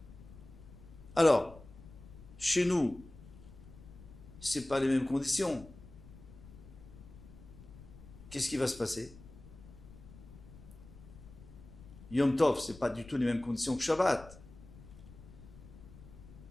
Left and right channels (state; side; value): noise; left; rumble, 18 dB below the sound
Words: Alors, chez nous, c'est pas les mêmes conditions. Qu'est-ce qui va se passer? Yom Tov, c'est pas du tout les mêmes conditions que Shabbat.